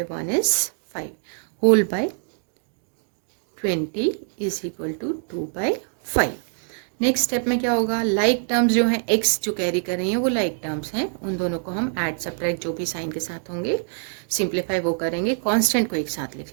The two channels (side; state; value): left; silent; digital silence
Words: 1 is 5 whole by 20 is equal to 2 by 5. Next step में क्या होगा, like terms जो हैं x जो कैरी कर रही हैं वो लाइक टर्म्स हैं, उन दोनों को हम ऐड सब्ट्रैक्ट जो भी साइन के साथ होंगे सिंप्लीफाई वो करेंगे, कांस्टेंट को एक साथ